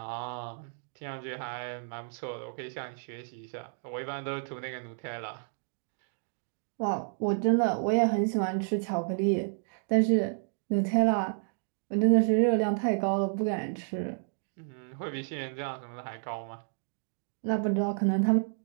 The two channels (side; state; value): left; silent; 57 dB below the other